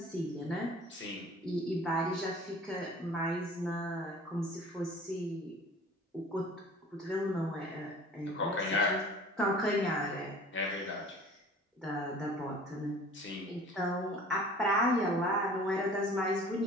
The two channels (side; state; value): both; normal; correlation 0.46